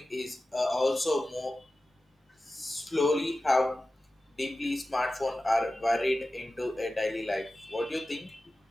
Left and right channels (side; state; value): both; normal; correlation 0.95